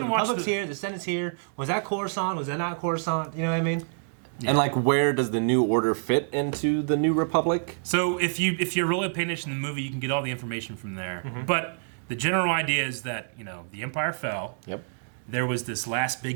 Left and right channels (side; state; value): left; silent; digital silence